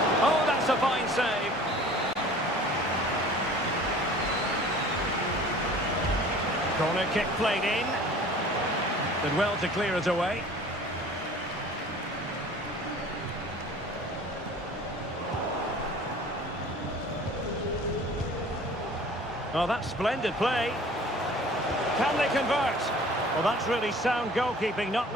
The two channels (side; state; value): both; normal; correlation 0.47